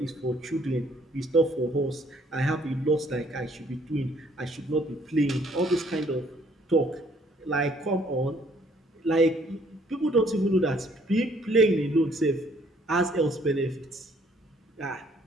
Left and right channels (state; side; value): normal; both; correlation 0.63